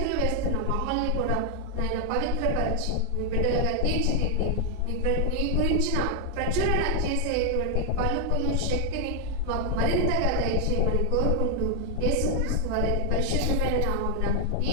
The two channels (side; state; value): both; different; correlation 0.00